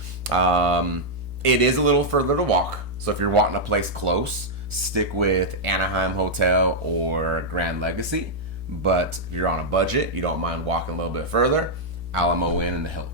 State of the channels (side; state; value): both; normal; correlation -0.05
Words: It is a little further to walk, so if you're wanting a place close, stick with Anaheim Hotel or Grand Legacy. But if you're on a budget, you don't mind walking a little bit further, Alamo Inn and the